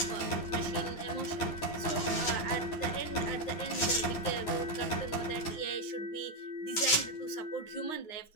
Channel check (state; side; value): late; right; 10 ms